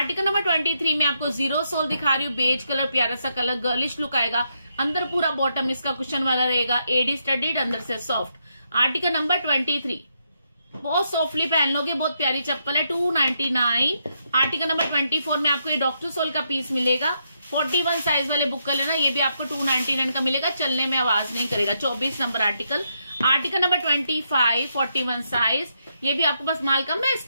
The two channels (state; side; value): inverted; both; correlation -0.79